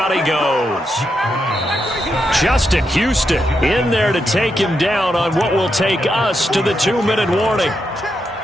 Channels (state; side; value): normal; both; correlation 0.83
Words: he goes. Justin Houston in there to take him down on what will take us to the 2-minute warning.